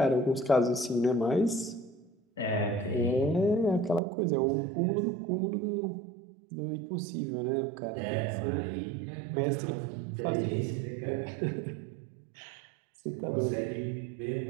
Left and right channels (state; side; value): drops out; left; at 4.0 s